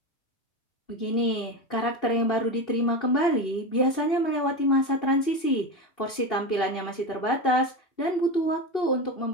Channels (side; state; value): right; late; 2.7 ms